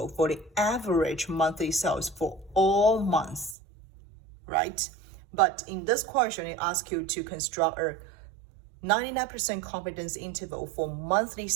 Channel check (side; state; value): left; drops out; at 3.6 s